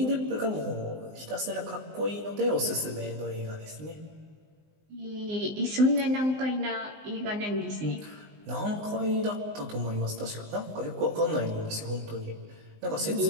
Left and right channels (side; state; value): left; late; 19 ms